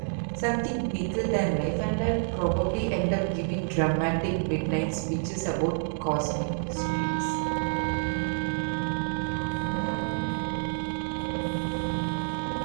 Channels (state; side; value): silent; left; 59 dB below the other